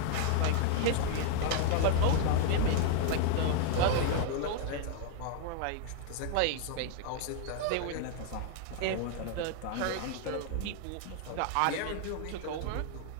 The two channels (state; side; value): different; both; correlation 0.01